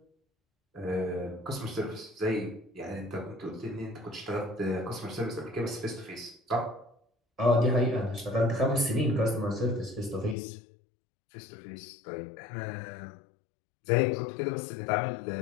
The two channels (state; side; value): drops out; right; at 10.4 s